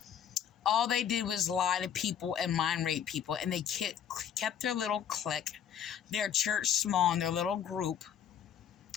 All they did was lie to people and mind rape people, and they kept their little clique, their church small, and their little group.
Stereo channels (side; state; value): right; quieter; 8.9 dB